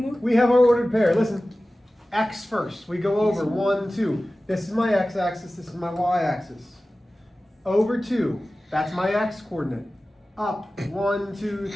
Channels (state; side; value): normal; both; correlation 0.96